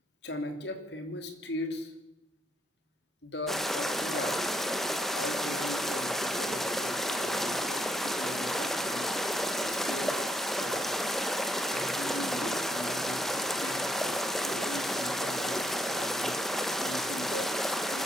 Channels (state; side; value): normal; both; correlation 0.75